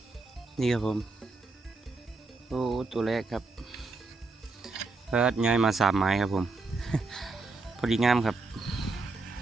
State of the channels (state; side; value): quieter; left; 3.6 dB